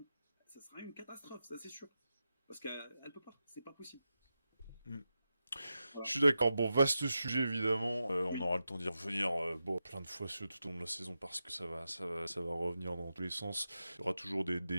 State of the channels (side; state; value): both; inverted; correlation -0.91